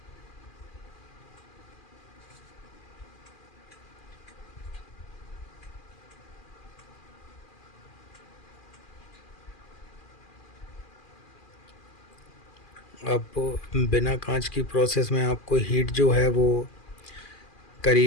अब बिना कांच की प्रोसेस में आपको हीट जो है वो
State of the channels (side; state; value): right; late; 2.4 ms